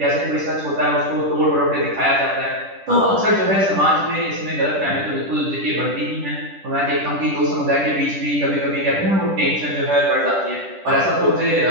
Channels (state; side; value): late; left; 10 ms